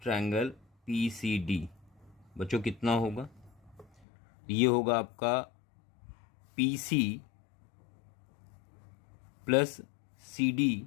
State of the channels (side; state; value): right; drops out; at 4.0 s